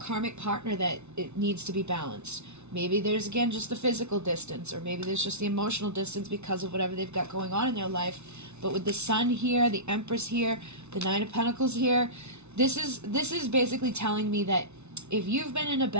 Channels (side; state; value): left; late; 0.81 ms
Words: partner that it needs to be balanced. Maybe there's, again, just the physical distance, or maybe there's just the emotional distance because of whatever they've got going on in their life. But with the Sun here, the Empress here, the Nine of Pentacles here, this is basically telling me that if you've been in a